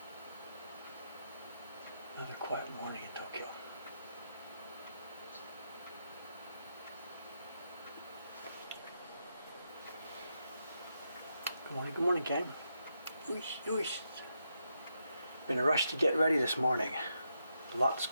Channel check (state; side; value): inverted; both; correlation -0.83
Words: Another quiet morning in Tokyo. Good morning, gang. Been a rush to get ready this morning. Lots